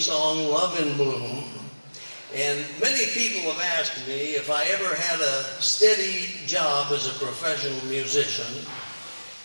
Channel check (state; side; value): inverted; both; correlation -1.00